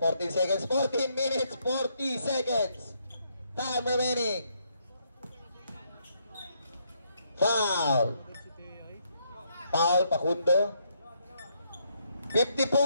minutes, 40 seconds. Time remaining. Foul. Foul, Pakundo.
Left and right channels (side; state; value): both; inverted; correlation -0.75